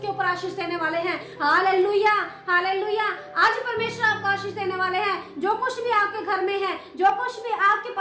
ऊपर आशीष देने वाले हैं। Hallelujah, hallelujah. आज परमेश्वर आपको आशीष देने वाले हैं। जो कुछ भी आपके घर में है, जो कुछ भी आपके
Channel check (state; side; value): identical; both; correlation 1.00